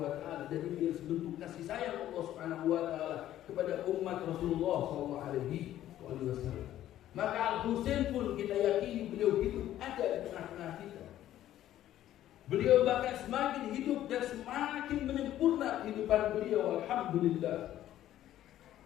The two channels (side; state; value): right; quieter; 12.7 dB